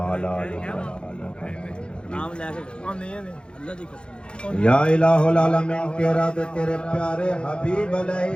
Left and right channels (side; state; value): right; late; 0.054 ms